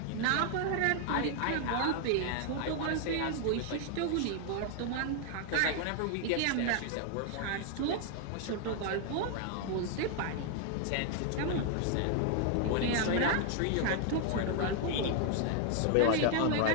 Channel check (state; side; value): different; both; correlation 0.00